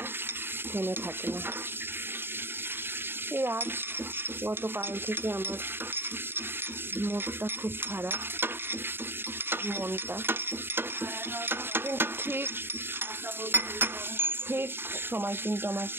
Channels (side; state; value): left; late; 0.11 ms